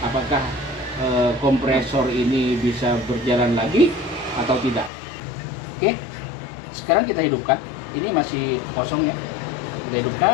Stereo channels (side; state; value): right; drops out; at 4.9 s